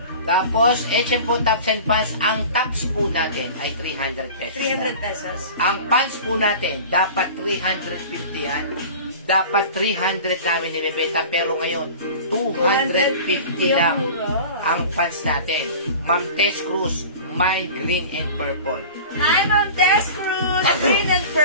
Tapos, H&M po tops and pants. Ang tops po natin ay 300 pesos. 300 lang. pesos. Ang pants po natin, dapat 350 yan. Dapat 300 namin nilibenta, pero ngayon, 250 lang ang pants natin. Ma'am Tess Cruz, Mind Green and Purple. Hi, Ma'am Tess Cruz. Green and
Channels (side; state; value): both; inverted; correlation -0.38